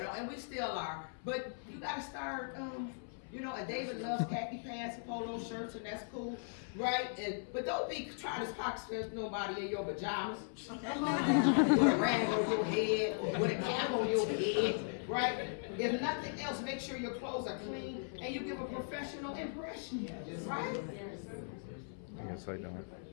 we still are. But you gotta start, you know, and David loves khaki pants and polo shirts, and that's cool, right? But don't be trying to pocket nobody in your pajamas. With a rag on your head, with a cap on your head, right? If nothing else, make sure your clothes are clean and you give a professional impression, right? I guess I don't.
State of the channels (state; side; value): silent; right; 52 dB below the other